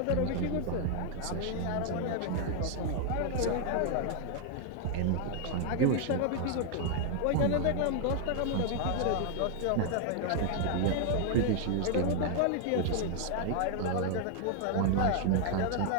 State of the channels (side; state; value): both; different; correlation 0.00